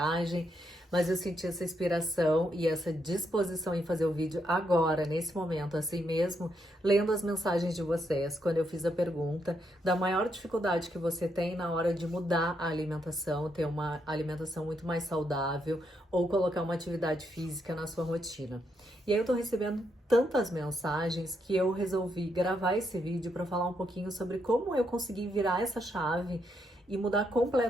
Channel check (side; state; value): both; normal; correlation 0.79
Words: mas eu senti essa inspiração e essa disposição em fazer o vídeo agora, nesse momento, assim mesmo, lendo as mensagens de vocês, quando eu fiz a pergunta da maior dificuldade que você tem na hora de mudar a alimentação, ter uma alimentação muito mais saudável ou colocar uma atividade física na sua rotina. E aí eu tô recebendo tantas mensagens que eu resolvi gravar esse vídeo para falar um pouquinho sobre como eu consegui virar essa chave e mudar